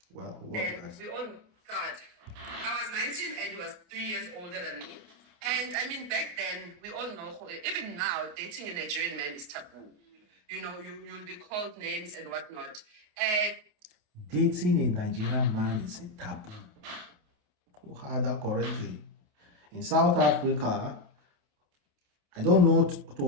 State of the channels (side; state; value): left; late; 28 ms